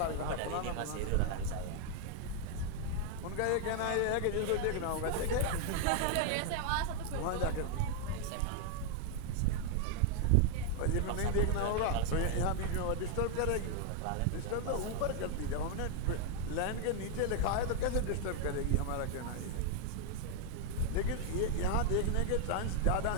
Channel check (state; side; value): different; both; correlation 0.00